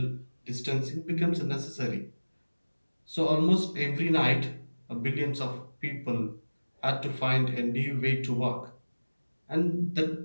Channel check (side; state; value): both; inverted; correlation -1.00